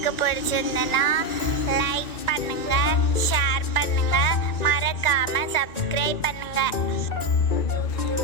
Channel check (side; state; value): right; late; 2.4 ms